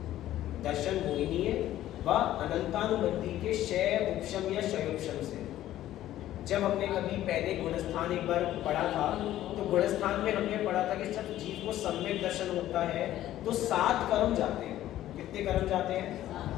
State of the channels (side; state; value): right; quieter; 13.5 dB